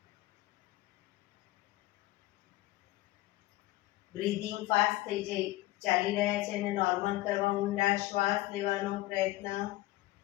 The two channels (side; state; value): right; quieter; 18.0 dB